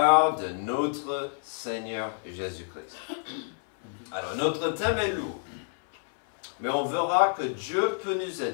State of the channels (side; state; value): right; silent; 59 dB below the other